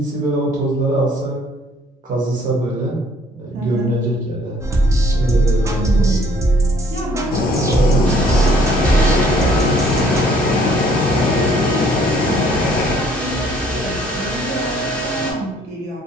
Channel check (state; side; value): normal; both; correlation 0.60